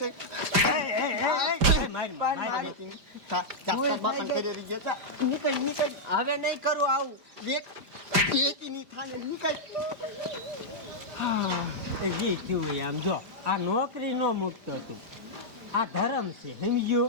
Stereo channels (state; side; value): late; left; 5.0 ms